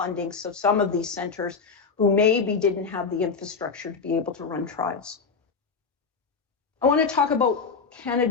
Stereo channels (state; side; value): quieter; right; 5.1 dB